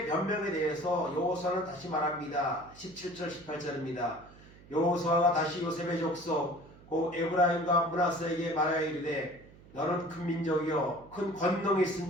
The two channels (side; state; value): right; noise; hum, 22 dB below the sound